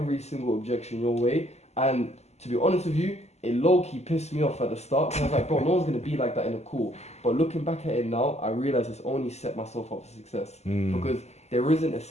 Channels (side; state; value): right; late; 0.32 ms